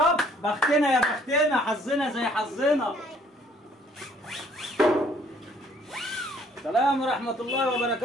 بختنا يا بختنا، حظنا زي حظنا. السلام ورحمة الله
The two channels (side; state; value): both; normal; correlation 0.61